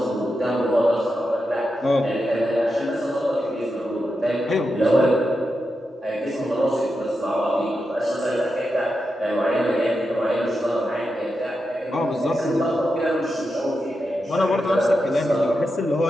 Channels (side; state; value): both; normal; correlation 0.88